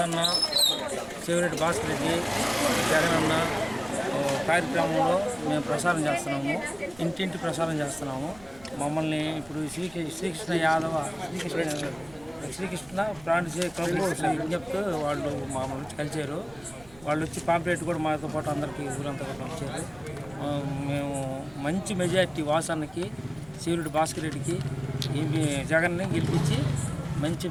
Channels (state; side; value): noise; right; rumble, 22 dB below the sound